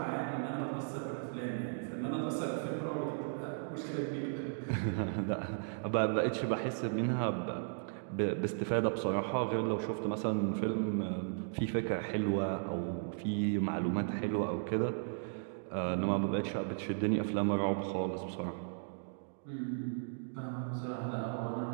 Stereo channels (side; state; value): left; silent; digital silence